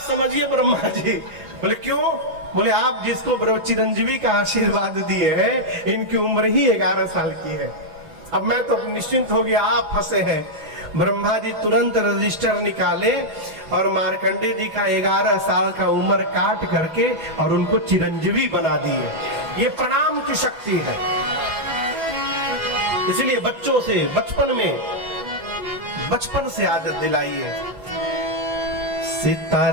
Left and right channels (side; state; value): left; late; 6.0 ms